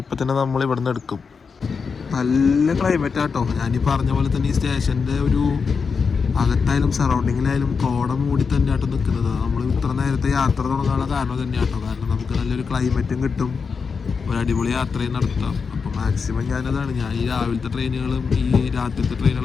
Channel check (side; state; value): right; quieter; 5.4 dB